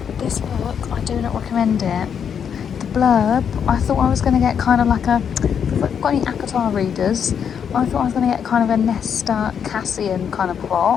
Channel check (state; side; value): quieter; right; 7.7 dB